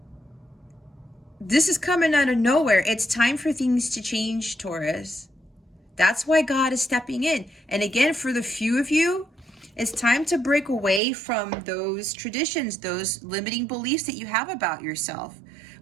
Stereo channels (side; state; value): left; drops out; at 11.0 s